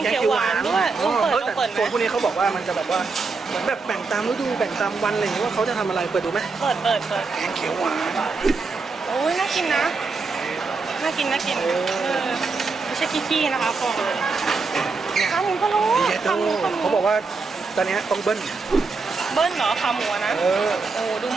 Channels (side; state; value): left; quieter; 4.3 dB